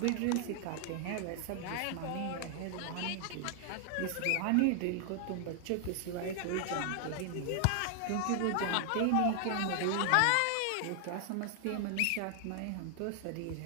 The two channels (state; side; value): different; both; correlation 0.00